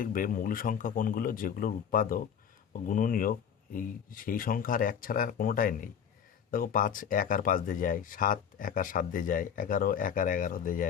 মৌলিক সংখ্যা কোনগুলো, যেগুলোর উৎপাদক ও গুণনীয়ক এই সেই সংখ্যা আর 1 ছাড়া আর কোনোটাই নেই। দেখো 5 1 আর 5 দিয়ে যায়, 7 1 আর 7 দিয়ে যায়, 11 1 আর 11 দিয়ে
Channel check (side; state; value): right; quieter; 8.0 dB